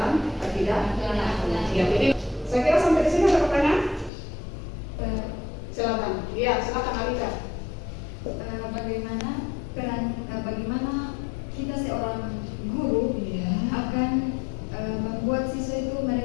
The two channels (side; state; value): right; drops out; at 4.1 s